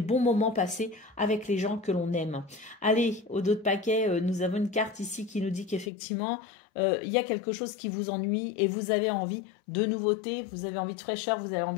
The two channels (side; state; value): right; drops out; at 5.9 s